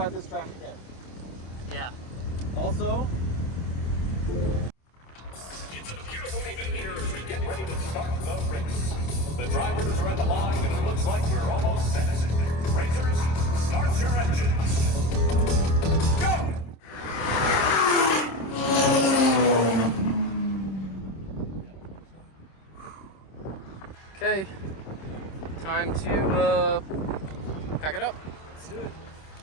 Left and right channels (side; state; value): right; late; 26 ms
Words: this track again. Yeah. Also, It's a beautiful evening here as we get ready to start the race. The drivers are at the line and it looks like we're almost set. Racers, start your engines. Go! Okay. Time to pack it up. let's do it.